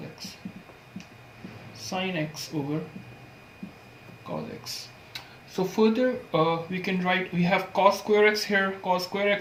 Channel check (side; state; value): both; identical; correlation 1.00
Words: x. Sin x over cos x. So further we can write, we have cos square x here, cos square